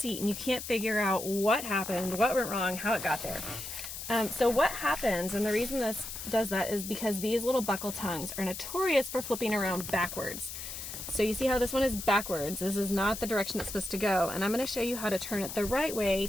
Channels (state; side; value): noise; left; hiss, 8 dB below the sound